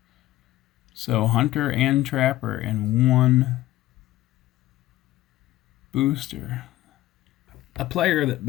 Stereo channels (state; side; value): quieter; right; 15.8 dB